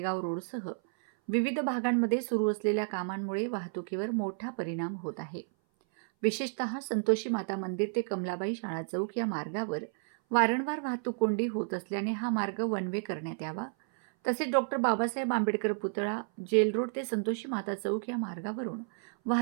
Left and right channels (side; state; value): left; silent; 57 dB below the other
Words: रोडसह विविध भागांमध्ये सुरू असलेल्या कामांमुळे वाहतुकीवर मोठा परिणाम होत आहे। विशेषतः संतोषी माता मंदिर ते कमलाबाई शाळा चौक या मार्गावर वारंवार वाहतूक कोंडी होत असल्याने हा मार्ग वन वे करण्यात यावा। तसेच डॉक्टर बाबासाहेब आंबेडकर पुतळा, जेल रोड ते संतोषी माता चौक या मार्गावरून